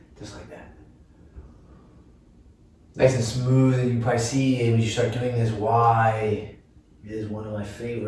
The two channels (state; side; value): identical; both; correlation 1.00